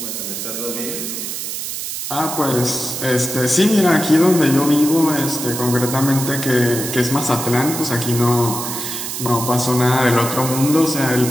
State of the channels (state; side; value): noise; right; hiss, 5 dB below the sound